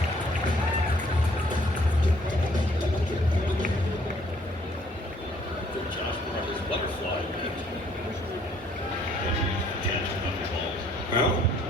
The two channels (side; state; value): both; normal; correlation 0.63